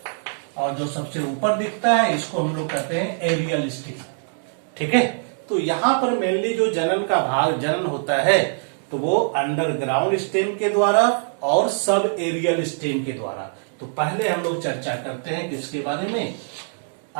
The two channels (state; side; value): silent; left; digital silence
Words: और जो सबसे ऊपर दिखता है इसको हम लोग कहते हैं एरियल स्टेम, ठीक है। तो यहां पर मेनली जो जनन का भाग जनन होता है तो वो अंडरग्राउंड स्टेम के द्वारा और सब एरियल स्टेम के द्वारा। तो पहले हम लोग चर्चा करते हैं किसके बारे में?